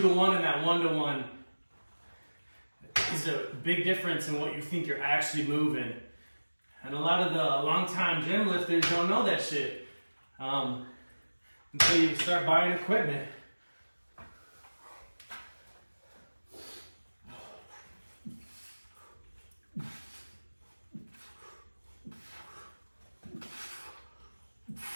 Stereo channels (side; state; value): both; inverted; correlation -1.00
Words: and that 1-to-1 is a big difference in what you think you're actually moving. And a lot of the long-time gym lifters don't know that shit until you start buying equipment.